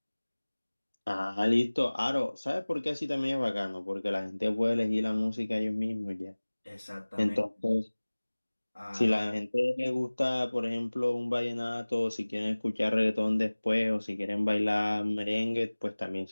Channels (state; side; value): inverted; both; correlation -1.00